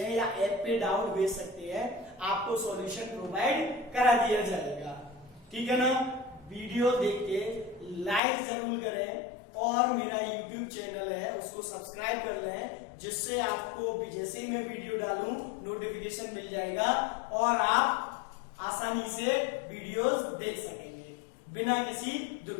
या ऐप पे डाउट भेज सकते हैं, आपको सॉल्यूशन प्रोवाइड करा दिया जाएगा। ठीक है ना। वीडियो देख के लाइक जरूर करें और मेरा YouTube चैनल है उसको सब्सक्राइब कर लें, जिससे आपको जैसे ही मैं वीडियो डालूं नोटिफिकेशन मिल जाएगा और आप आसानी से वीडियोस देख सकेंगे बिना किसी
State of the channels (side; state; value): right; drops out; at 8.2 s